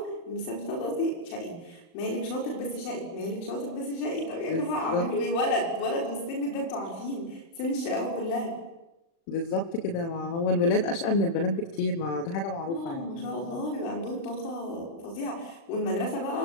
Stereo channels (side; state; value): right; late; 36 ms